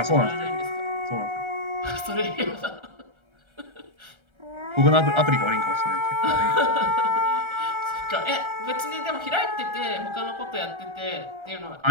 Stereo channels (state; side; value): late; left; 1.3 ms